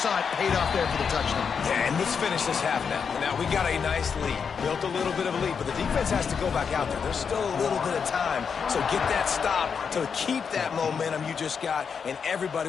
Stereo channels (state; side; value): quieter; right; 6.3 dB